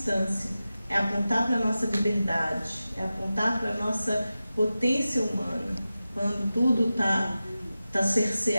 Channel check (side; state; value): both; inverted; correlation -0.94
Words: é apontar para a nossa liberdade, é apontar para a nossa potência humana, quando tudo está